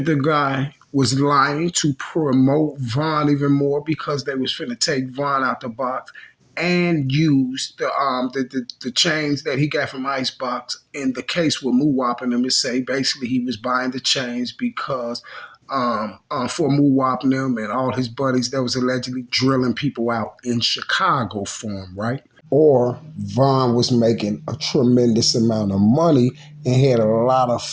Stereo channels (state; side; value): identical; both; correlation 1.00